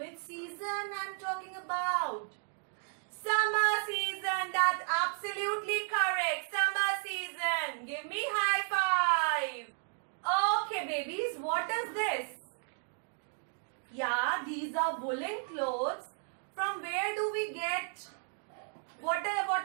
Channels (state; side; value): silent; left; 55 dB below the other